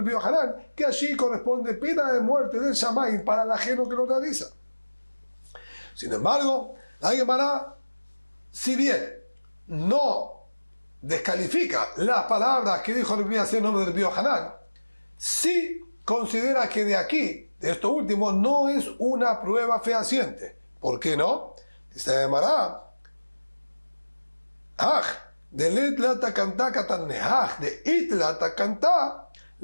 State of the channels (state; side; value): inverted; both; correlation -1.00